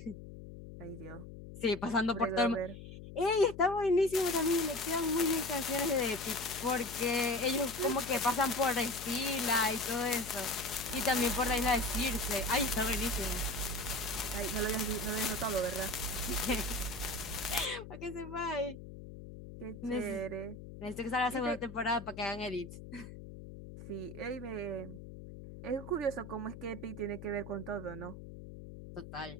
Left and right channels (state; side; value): noise; left; hum, 13 dB below the sound